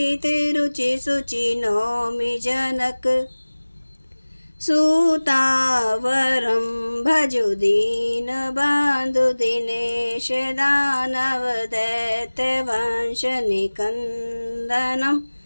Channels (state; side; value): inverted; both; correlation -1.00